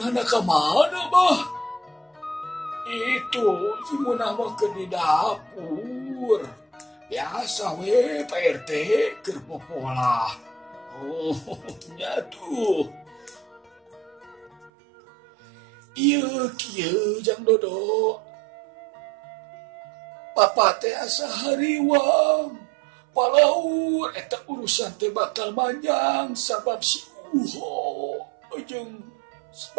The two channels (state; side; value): drops out; left; at 14.7 s